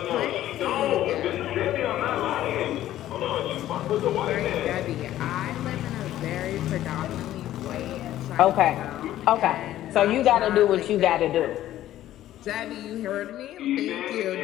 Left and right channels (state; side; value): quieter; right; 13.3 dB